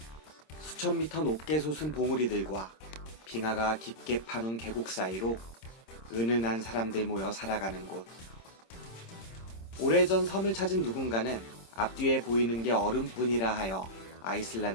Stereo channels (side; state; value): right; late; 26 ms